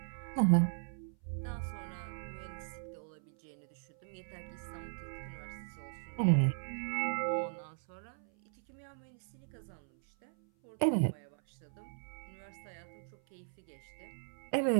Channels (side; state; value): left; silent; 53 dB below the other